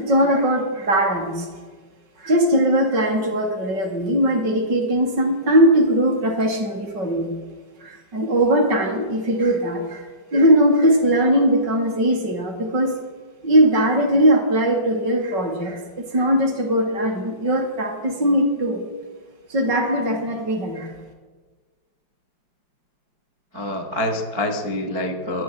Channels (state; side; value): late; left; 5.3 ms